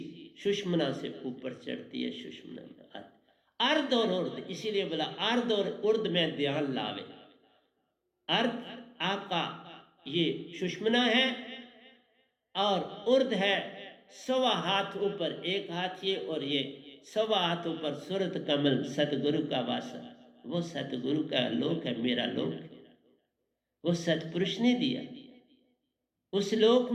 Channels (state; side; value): identical; both; correlation 1.00